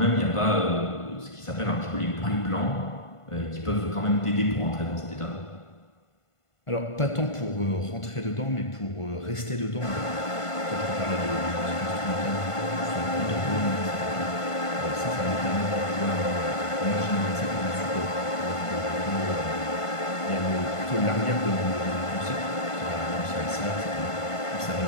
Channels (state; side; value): late; right; 1.5 ms